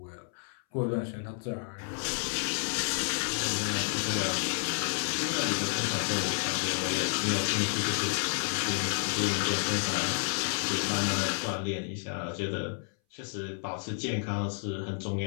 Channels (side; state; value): right; silent; 57 dB below the other